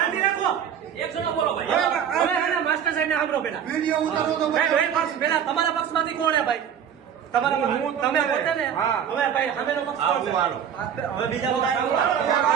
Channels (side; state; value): left; quieter; 8.6 dB